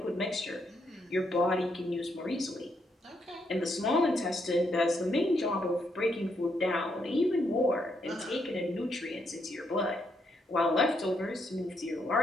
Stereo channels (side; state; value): both; normal; correlation 0.77